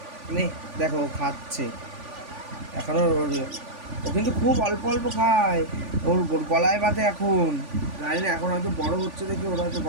নে দেখো ও খাচ্ছে এখনো। ও কিন্তু খুব অল্প অল্প খায়, ওর গলায় বাঁধে এখন। জানি না এখন হয়তো বড় হচ্ছে দেখে ওরা হয়তো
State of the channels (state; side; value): late; left; 3.5 ms